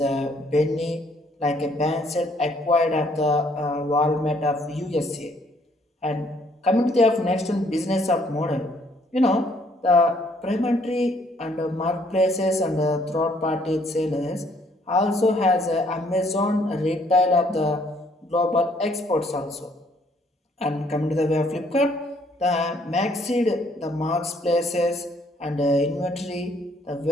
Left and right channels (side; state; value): both; normal; correlation 0.65